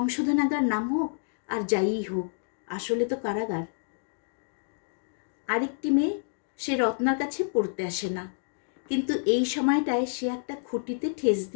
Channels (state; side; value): silent; right; digital silence